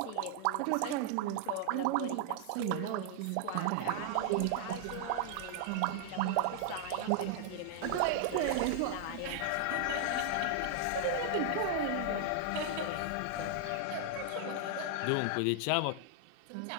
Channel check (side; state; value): both; different; correlation 0.00